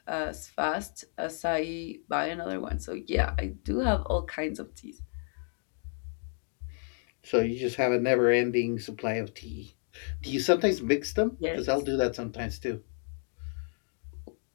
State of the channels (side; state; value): right; silent; 57 dB below the other